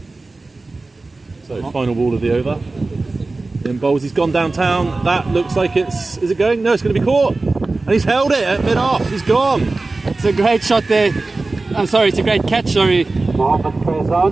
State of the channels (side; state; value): left; quieter; 3.4 dB